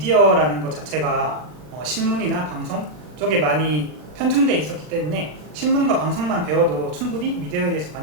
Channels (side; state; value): left; late; 40 ms